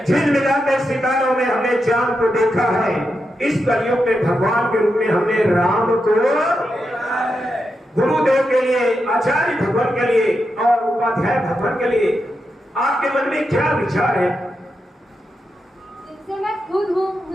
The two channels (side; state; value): both; normal; correlation 0.86